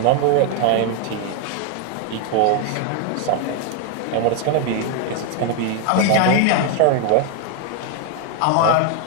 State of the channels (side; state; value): both; different; correlation 0.01